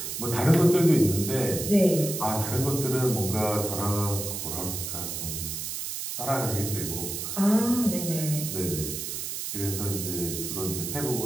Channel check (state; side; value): noise; right; hiss, 5 dB below the sound